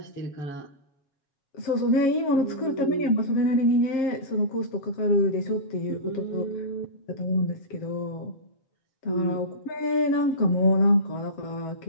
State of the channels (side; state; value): right; late; 7.6 ms